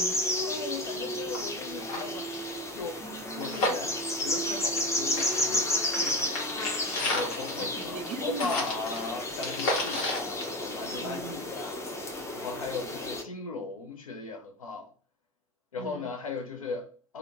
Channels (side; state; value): both; normal; correlation 0.22